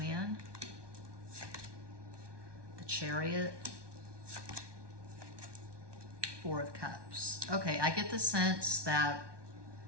the Chariot, Four of Cups. Okay, I get the sense that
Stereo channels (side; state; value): left; late; 1.2 ms